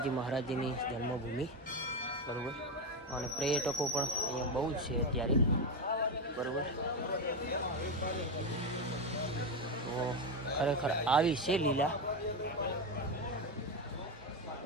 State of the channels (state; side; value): normal; both; correlation 0.12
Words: મહારાજજીની જન્મભૂમિ, બરાબર? અને પર્યટકો પણ અહીંયા બહુ જ છે અત્યારે, બરાબર? તો ખરેખર આવી છે લીલા.